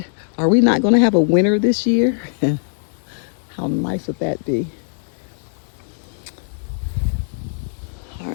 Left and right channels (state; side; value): silent; right; digital silence